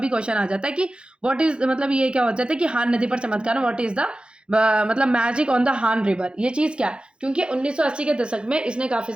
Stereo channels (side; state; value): left; late; 0.054 ms